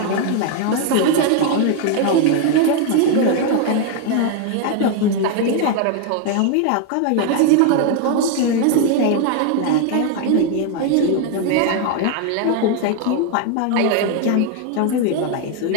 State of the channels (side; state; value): both; different; correlation 0.01